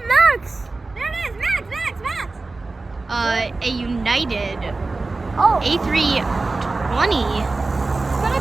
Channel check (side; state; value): left; quieter; 3.5 dB